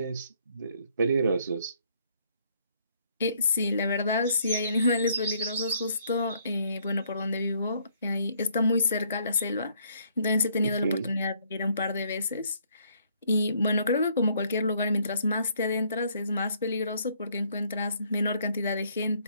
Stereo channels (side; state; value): both; inverted; correlation -0.66